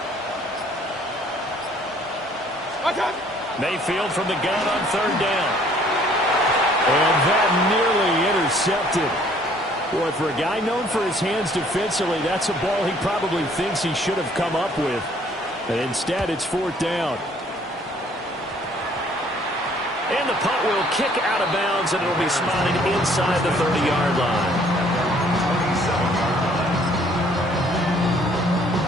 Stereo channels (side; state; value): both; normal; correlation 0.60